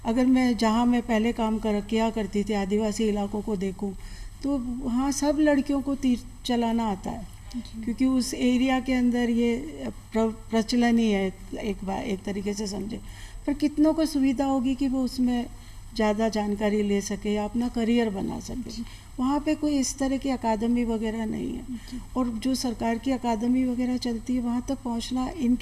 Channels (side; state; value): both; identical; correlation 1.00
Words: अगर मैं जहाँ मैं पहले काम किया करती थी आदिवासी इलाकों को देखूं, तो वहाँ सब लड़कियों को तीर चलाना आता है, क्योंकि उस एरिया के अंदर ये प्रचलन ही है एक तरीके से समझे। पर कितनों को सुविधा होगी कि वो उसमें ज़्यादा जानकारी ले सके या अपना करियर बना सके। वहाँ पे कोई इस तरह की अकादमी वगैरह नहीं है, और जो सरकार की अकादमी वगैरह चलती है वहाँ तक पहुँचना